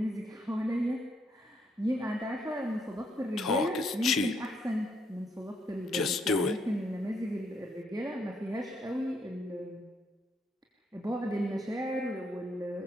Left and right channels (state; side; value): normal; both; correlation 0.74